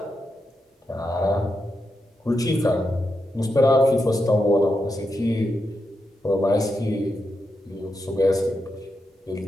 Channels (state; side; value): normal; both; correlation 0.86